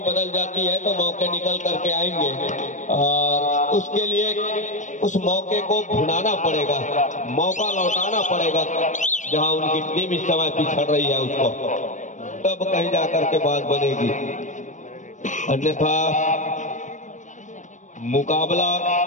बदल जाती है तो मौके निकल करके आएंगे और उसके लिए उस मौके को भुनाना पड़ेगा, मौका लौटाना पड़ेगा जहां उनकी टीम इस समय पिछड़ रही है उसको, तब कहीं जा करके बात बनेगी। अन्यथा मुकाबला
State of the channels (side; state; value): right; late; 0.36 ms